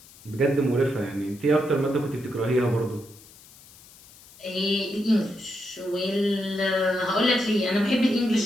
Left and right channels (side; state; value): left; noise; hiss, 23 dB below the sound